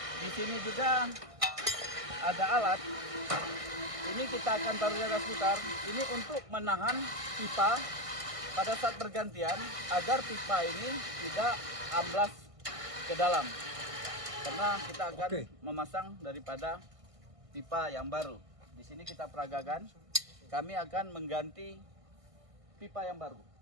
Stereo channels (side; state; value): left; late; 1.6 ms